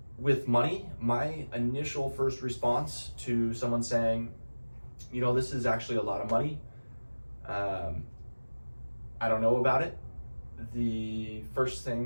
With money, my initial first response to someone saying, this is actually a lot of money, I don't know about it. But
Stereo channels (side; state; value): both; inverted; correlation -1.00